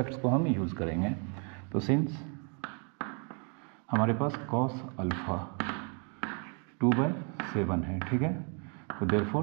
को हम यूज़ करेंगे। तो सिंस हमारे पास cos अल्फ़ा 2/7 है। ठीक है, तो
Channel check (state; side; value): quieter; left; 38.5 dB